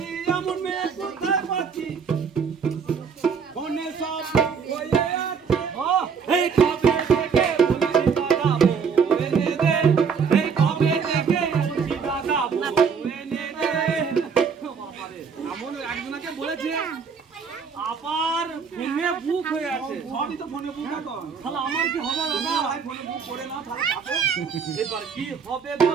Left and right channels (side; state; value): left; quieter; 6.1 dB